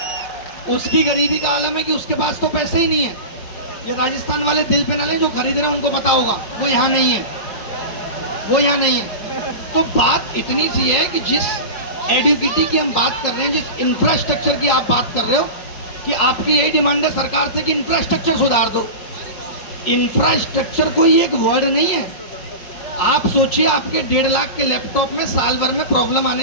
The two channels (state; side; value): late; right; 4.8 ms